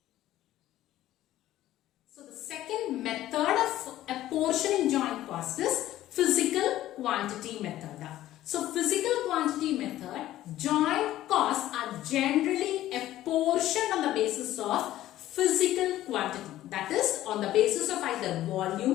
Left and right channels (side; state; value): right; quieter; 14.1 dB